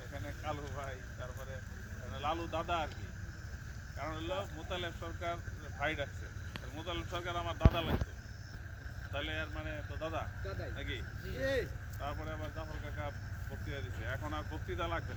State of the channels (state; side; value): identical; both; correlation 1.00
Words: এখানে কালু ভাই, তারপরে এখানে লালু দাদা আর কি। কারণ হলো মোতালেব সরকার ভাই ডাকছে, মোতালেব সরকার আমার দাদা লাগতো, তাহলে আর মানে তো দাদা নাকি? তারপরে আবার জাফর কাকা বক্তৃতা দিচ্ছে, এখন আর বক্তৃতা লাগবে